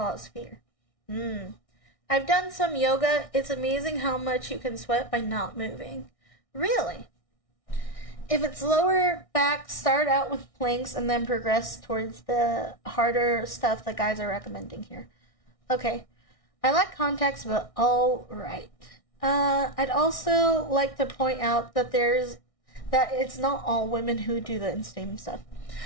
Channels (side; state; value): right; late; 1.6 ms